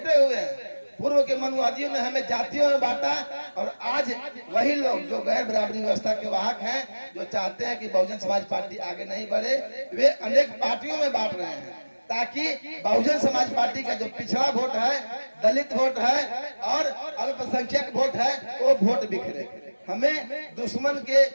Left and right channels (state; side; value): inverted; both; correlation -1.00